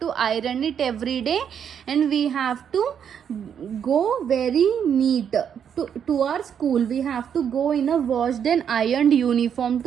iron it every day, and we have to go very neat to our school. We have to go in a washed and ironed uniform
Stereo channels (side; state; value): left; quieter; 8.2 dB